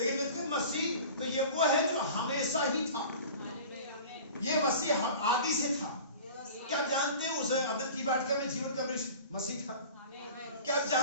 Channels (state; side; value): inverted; both; correlation -0.40